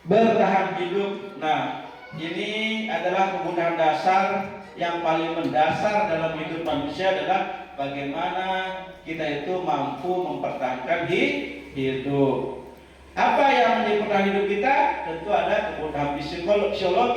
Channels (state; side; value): identical; both; correlation 1.00